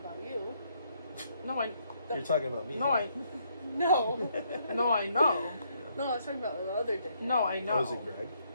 about you. No, I. You're talking about me. No, I. No. No, I know. No, I was talking about the other dick. No, I know. Oh, is it Greg?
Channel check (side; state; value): both; inverted; correlation -0.72